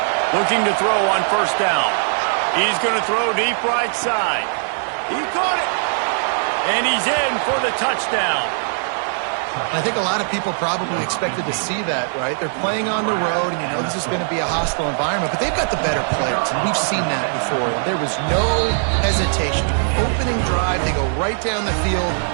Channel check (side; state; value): left; silent; digital silence